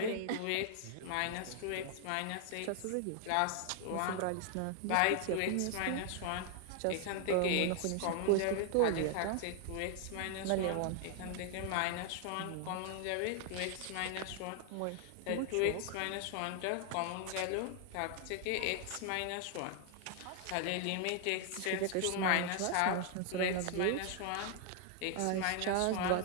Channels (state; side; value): different; both; correlation 0.00